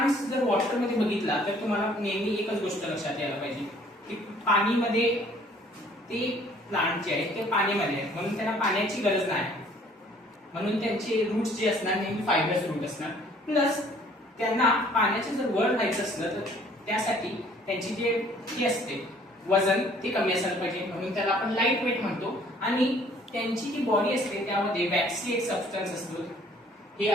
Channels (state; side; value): normal; both; correlation 0.57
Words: जर वॉटर मध्ये बघितला तर तुम्हाला नेहमी एकच गोष्ट लक्षात यायला पाहिजे की पाणीमध्ये ते प्लांट जे आहे ते पाण्यामध्ये आहेत, म्हणून त्यांना पाण्याची गरज नाही, म्हणून त्यांचे रूट्स जे असणार नेहमी फायबरस रूट असणार. प्लस त्यांना पाण्याचे जर वर राहायचं असलं तर त्यासाठी त्यांची जे ही असते वजन ते कमी असायला पाहिजे, म्हणून त्याला आपण लाईट वेट म्हणतो. आणि त्यांची जी बॉडी असते त्यामध्ये वॅक्सी एक सबस्टन्स असतो. हे